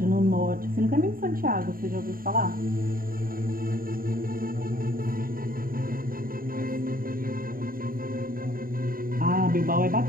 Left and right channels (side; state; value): left; late; 0.41 ms